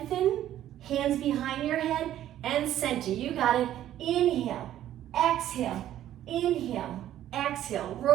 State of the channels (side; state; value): left; quieter; 12.2 dB